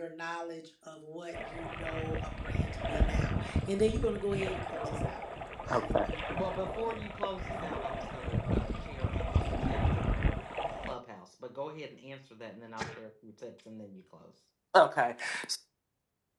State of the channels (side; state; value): both; identical; correlation 1.00